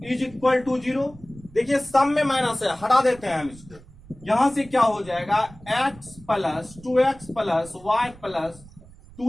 is equal to 0। देखिए सम में माइनस है, हटा देते हैं हम इसको। यहां से क्या हो जाएगा, x plus 2x plus y plus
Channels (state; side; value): noise; right; rumble, 21 dB below the sound